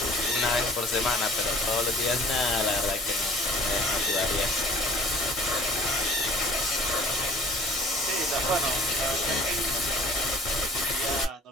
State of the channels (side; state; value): both; normal; correlation 0.50